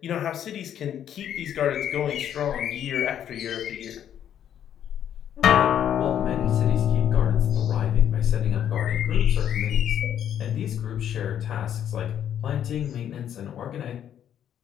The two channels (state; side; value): quieter; right; 9.9 dB